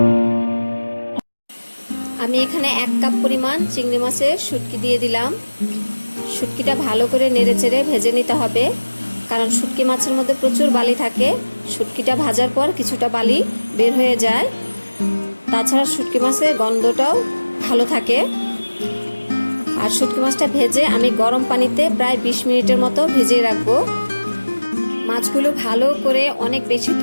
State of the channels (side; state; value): both; inverted; correlation -1.00